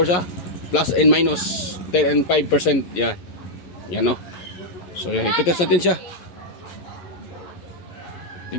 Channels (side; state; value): right; late; 11 ms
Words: plus and minus 10 and 5%. Yan, so yan, ititest natin siya.